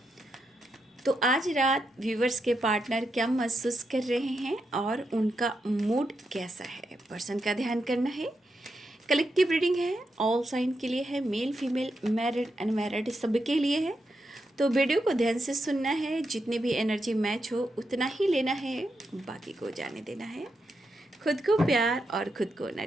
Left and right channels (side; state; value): both; normal; correlation 0.84